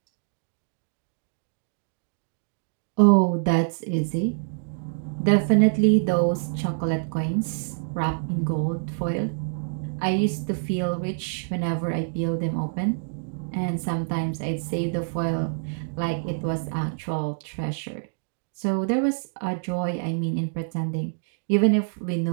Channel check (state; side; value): silent; left; digital silence